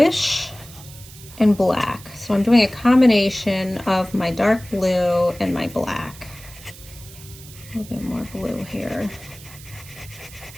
and black. So I'm doing a combination of my dark blue and my black. A little bit more blue here.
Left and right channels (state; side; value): noise; right; hiss, 18 dB below the sound